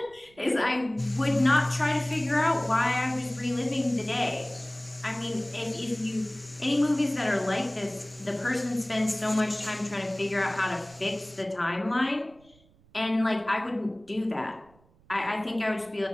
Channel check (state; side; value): noise; right; rumble, 30 dB below the sound